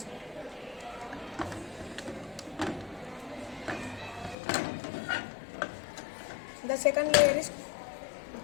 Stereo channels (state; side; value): drops out; right; at 4.4 s